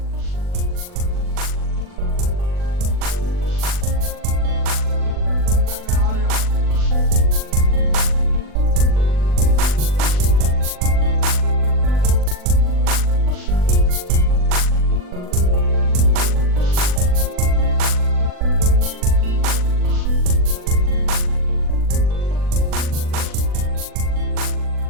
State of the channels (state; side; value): late; left; 39 ms